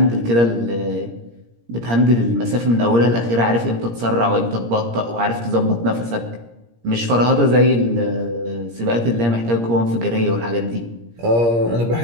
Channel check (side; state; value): left; late; 17 ms